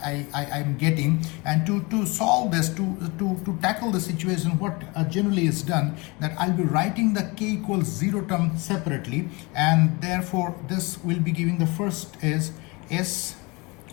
getting, and to solve this, to tackle the situation, what generally is done, that I'll be writing the k equals 0 term separately, and therefore this will be giving the first is s,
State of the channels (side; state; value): right; quieter; 26.3 dB